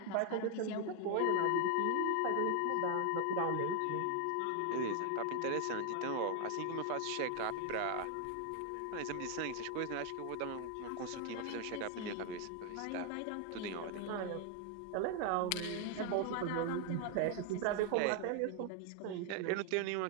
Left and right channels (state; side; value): different; both; correlation 0.00